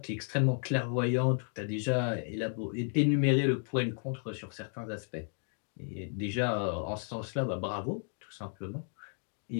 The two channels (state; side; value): silent; right; 56 dB below the other